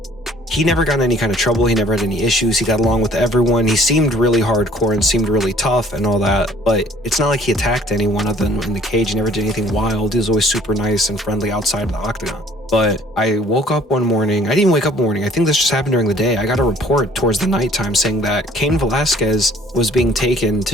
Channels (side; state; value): both; normal; correlation 0.55